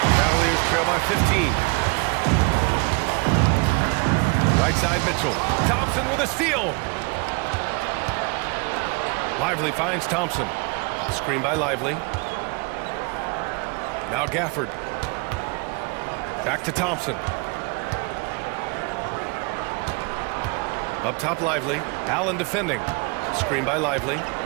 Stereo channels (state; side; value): quieter; left; 30.7 dB